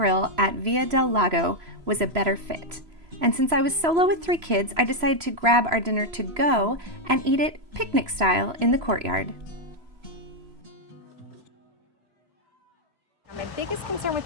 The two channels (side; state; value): left; late; 3.0 ms